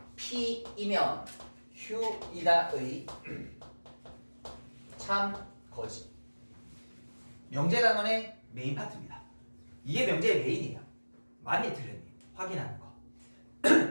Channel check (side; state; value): both; inverted; correlation -1.00